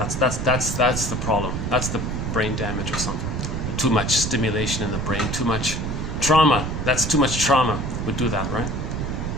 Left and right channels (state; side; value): noise; right; rumble, 3 dB below the sound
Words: the problem. That's the brain damage or something. Too much stimulation in the brain, too much trauma. That's too much trauma would do that, right?